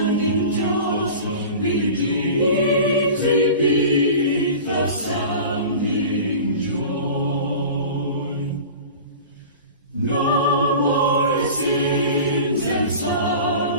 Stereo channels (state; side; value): inverted; both; correlation -0.37